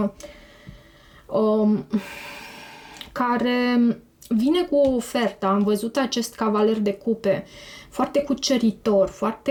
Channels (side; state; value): both; identical; correlation 1.00